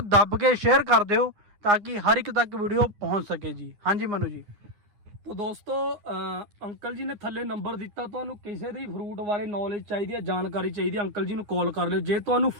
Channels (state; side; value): late; left; 9.7 ms